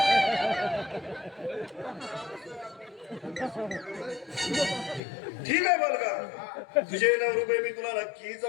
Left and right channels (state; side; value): drops out; right; at 5.0 s